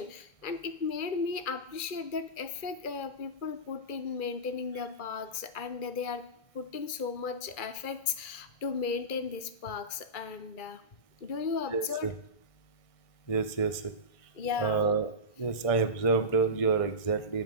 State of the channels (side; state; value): right; late; 2.3 ms